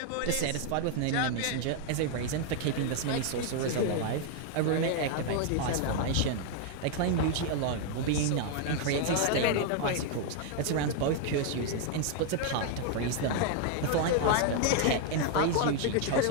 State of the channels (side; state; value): both; different; correlation 0.00